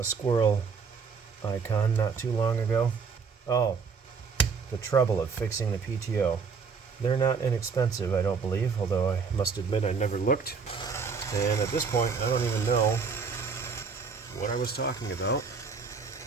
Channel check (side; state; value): left; quieter; 5.5 dB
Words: squirrel icon not too long ago. Oh, the trouble of fixing the PTO. They're not inexpensive, I don't believe, although I must admit I never looked. And at this point, I don't even know what I was talking about.